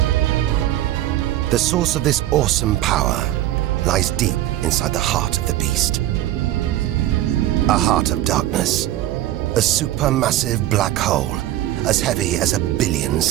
The source of this awesome power lies deep inside the heart of the beast. A heart of darkness. A supermassive black hole, as heavy as 1 billion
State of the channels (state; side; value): quieter; left; 13.9 dB